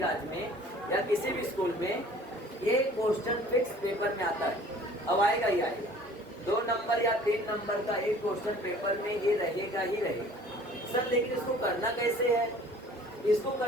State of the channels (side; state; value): both; normal; correlation 0.50